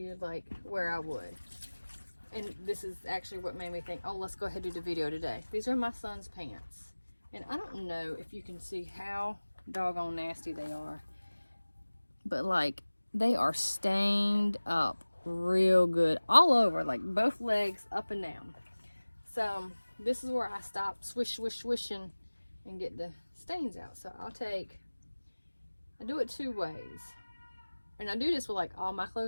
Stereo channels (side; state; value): both; inverted; correlation -1.00